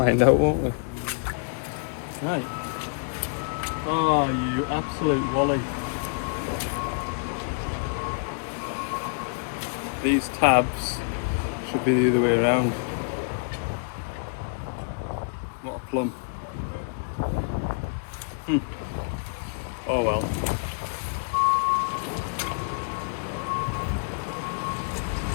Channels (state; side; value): quieter; right; 37.1 dB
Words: out, won't we? Right. Oh, you absolute wally. These tabs should be the other way around. What a plum. Oh well.